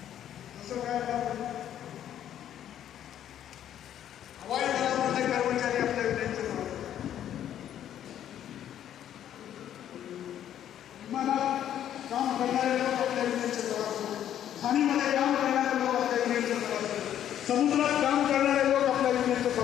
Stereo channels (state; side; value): quieter; right; 10.7 dB